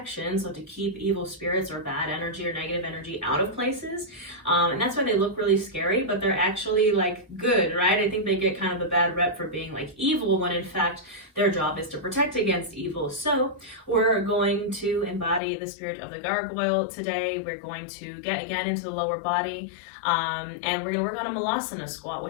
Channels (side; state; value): right; drops out; at 15.4 s